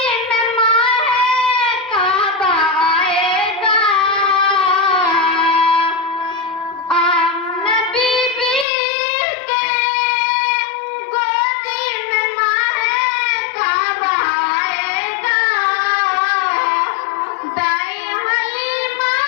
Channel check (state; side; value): drops out; right; at 8.7 s